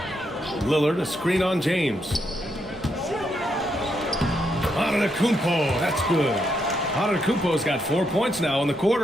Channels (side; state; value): both; normal; correlation 0.79